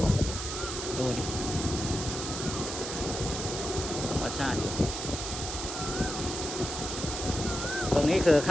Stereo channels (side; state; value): right; noise; hiss, 5 dB below the sound